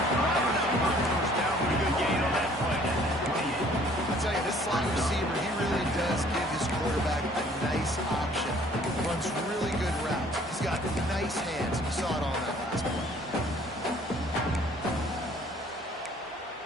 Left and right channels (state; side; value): normal; both; correlation 0.57